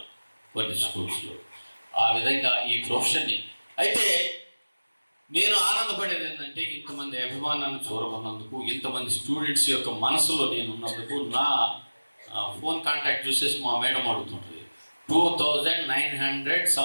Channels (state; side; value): inverted; both; correlation -1.00